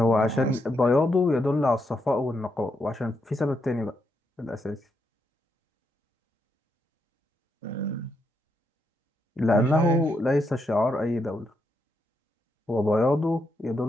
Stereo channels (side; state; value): both; normal; correlation 0.80